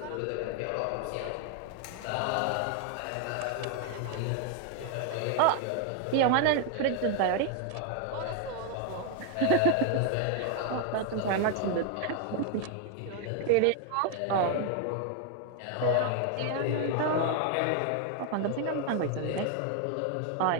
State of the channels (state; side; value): different; both; correlation 0.00